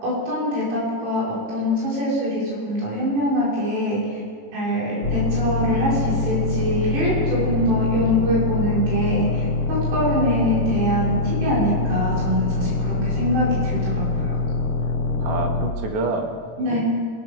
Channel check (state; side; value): late; left; 18 ms